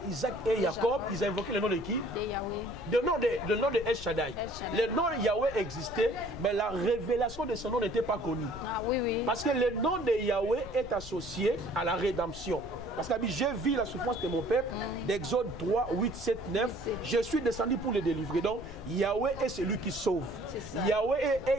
Isaac et Jacob, ils ont invoqué le nom de qui? Le nom de El Shaddai. Le nom de Yahweh existait, mais la révélation de son nom n'était pas connue. Ah, oui, oui. Parce que le nom de Yahweh est associé à la rédemption. Parce que j'ai vu la souffrance de mon peuple, d'Exode 3, 8, 7, 9. Je suis descendu pour le délivrer. Donc, Yahweh est celui qui sauve. Yahweh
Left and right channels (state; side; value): noise; left; rumble, 14 dB below the sound